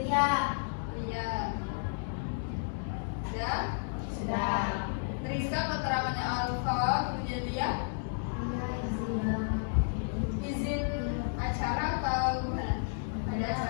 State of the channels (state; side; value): silent; right; digital silence